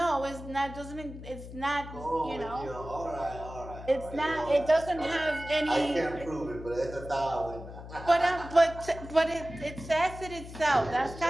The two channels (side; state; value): left; noise; hum, 13 dB below the sound